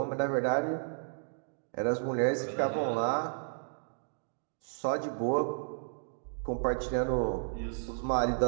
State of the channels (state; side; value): silent; left; digital silence